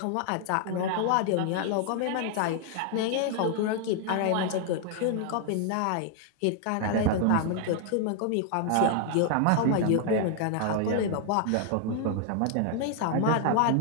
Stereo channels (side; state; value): both; different; correlation 0.00